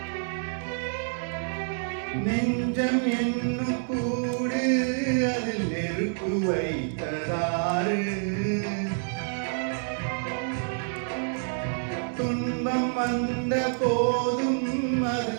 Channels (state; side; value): silent; left; digital silence